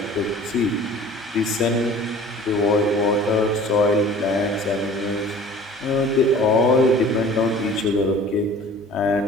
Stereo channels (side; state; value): both; normal; correlation 0.46